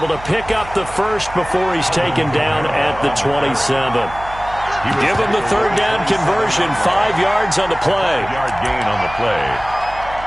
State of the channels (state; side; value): noise; right; hum, 15 dB below the sound